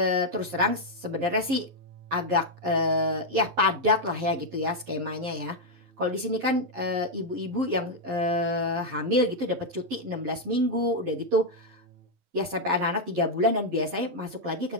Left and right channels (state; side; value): late; left; 11 ms